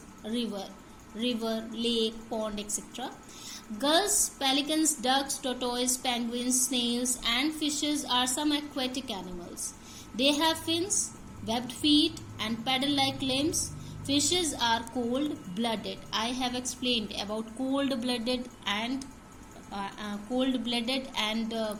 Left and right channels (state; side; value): identical; both; correlation 1.00